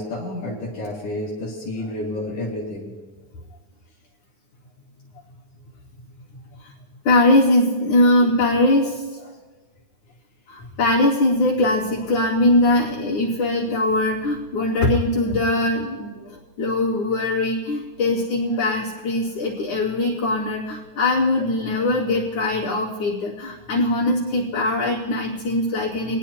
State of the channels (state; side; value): late; right; 9.6 ms